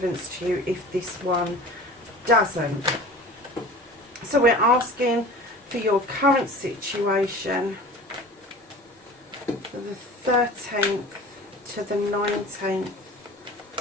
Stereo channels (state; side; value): normal; both; correlation 0.40